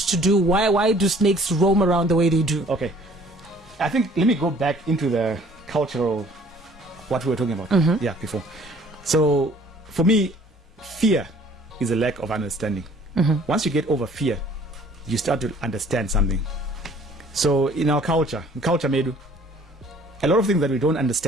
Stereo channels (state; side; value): normal; both; correlation 0.55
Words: do? Why do snakes roam around the way they do? Okay. I think, let me go back into the cultural, what we were talking about before. So for me, fear is a lack of understanding. Mm-hmm. Once you get over fear, you start to understand something. So in our culture Medu, a lot of things that we don't